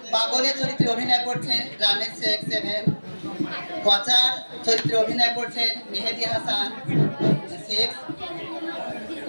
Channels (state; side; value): inverted; both; correlation -1.00